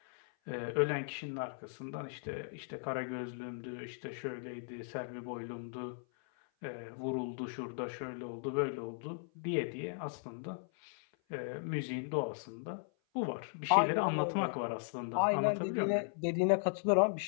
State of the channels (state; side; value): silent; right; 53 dB below the other